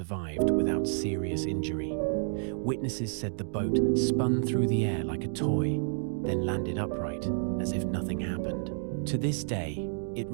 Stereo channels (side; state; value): left; silent; digital silence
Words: without serious injury. Witnesses said the boat spun through the air like a toy, then landed upright as if nothing happened. To this day, it